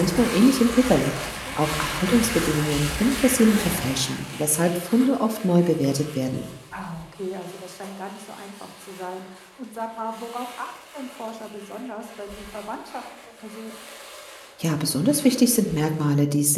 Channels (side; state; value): both; identical; correlation 1.00